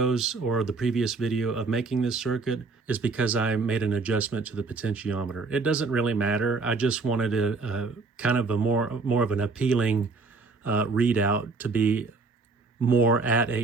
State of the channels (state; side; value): quieter; left; 4.1 dB